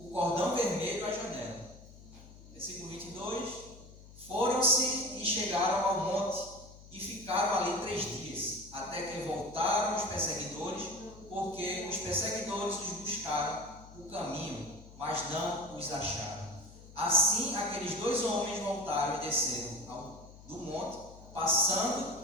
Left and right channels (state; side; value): noise; left; hum, 19 dB below the sound